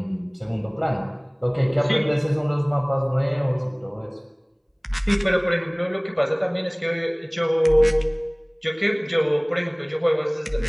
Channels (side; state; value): both; identical; correlation 1.00